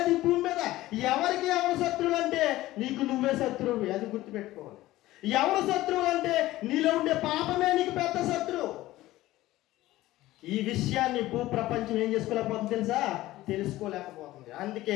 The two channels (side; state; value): right; quieter; 16.6 dB